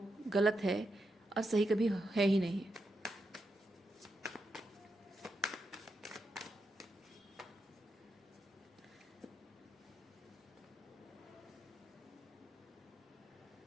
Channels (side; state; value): both; normal; correlation 0.85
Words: गलत है और सही कभी है ही नहीं।